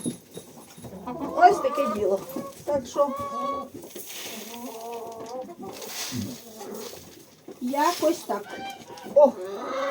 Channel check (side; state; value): both; identical; correlation 1.00